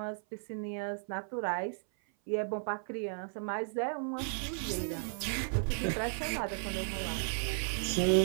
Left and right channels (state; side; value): silent; left; 55 dB below the other